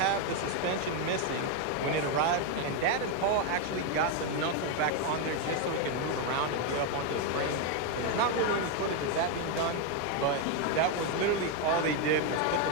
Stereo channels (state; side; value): different; both; correlation 0.02